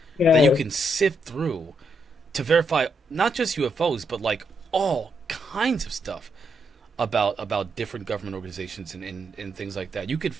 that you can sift through to verify not just UFOs, but like all kinds of stuff about different government organizations and things like that. You could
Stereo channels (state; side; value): normal; both; correlation 0.79